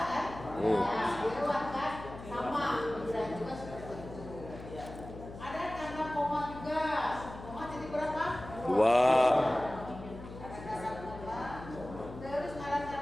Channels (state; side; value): noise; left; hum, 13 dB below the sound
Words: kan? Ya, lewat kan sama. Dan juga seperti itu. Ada tanda koma juga. Koma titik berapa? 2. Ada tanda koma. Terus ada